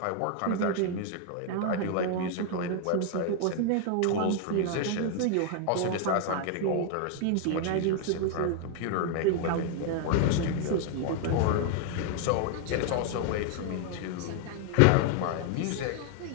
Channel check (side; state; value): both; different; correlation 0.00